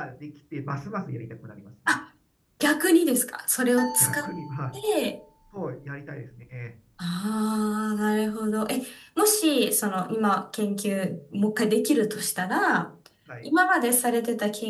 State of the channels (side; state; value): both; identical; correlation 1.00